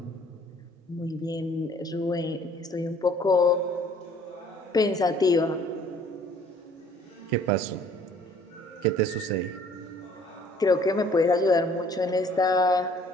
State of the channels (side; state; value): both; normal; correlation 0.57